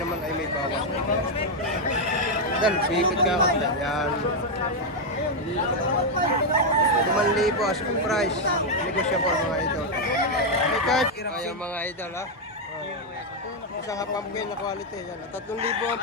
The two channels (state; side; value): normal; both; correlation 0.01